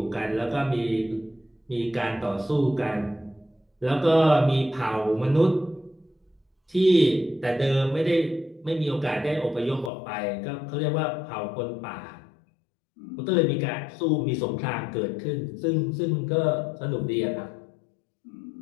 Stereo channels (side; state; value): right; drops out; at 9.9 s